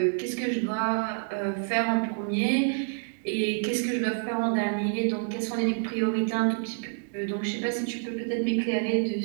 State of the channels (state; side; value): silent; left; 59 dB below the other